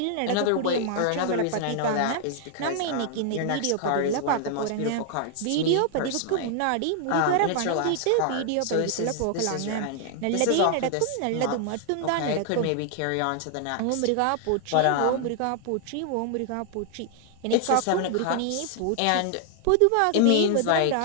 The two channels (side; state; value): both; different; correlation 0.00